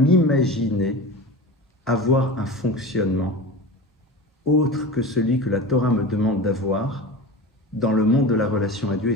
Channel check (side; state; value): both; normal; correlation 0.30